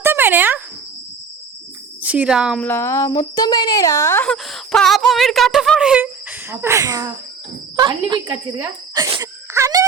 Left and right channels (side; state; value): left; quieter; 5.5 dB